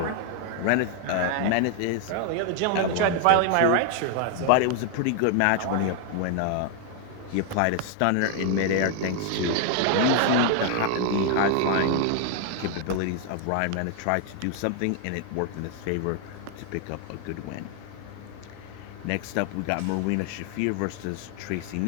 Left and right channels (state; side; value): different; both; correlation 0.00